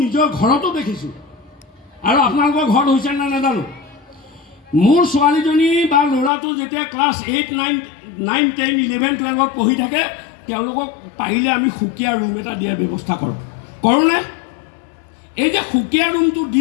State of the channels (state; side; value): drops out; right; at 6.3 s